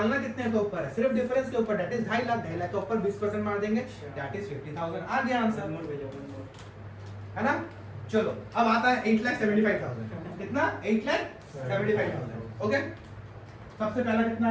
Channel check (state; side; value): identical; both; correlation 1.00